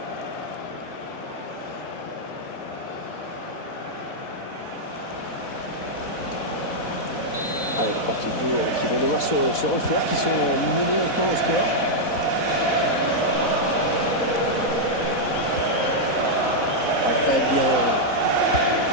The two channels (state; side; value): late; right; 4.1 ms